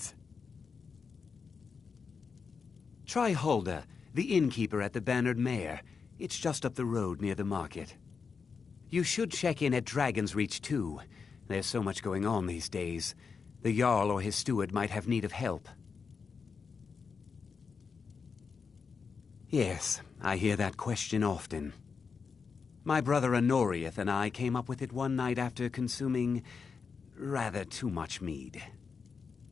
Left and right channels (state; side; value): quieter; right; 5.5 dB